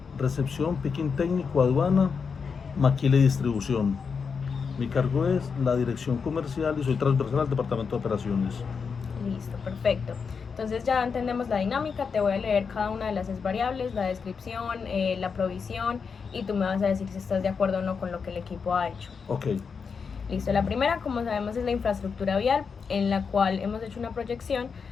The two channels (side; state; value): right; quieter; 5.7 dB